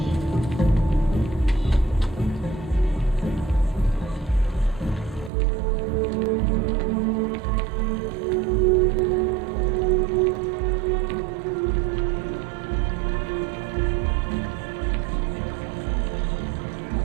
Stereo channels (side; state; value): left; drops out; at 5.3 s